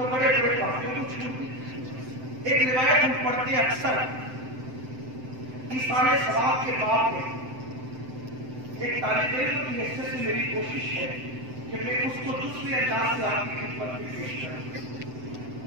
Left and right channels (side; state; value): left; late; 7.8 ms